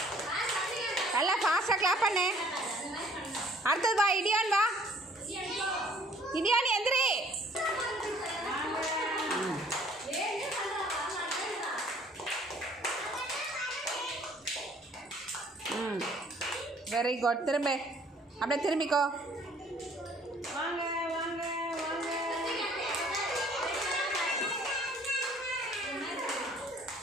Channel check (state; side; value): normal; both; correlation 0.58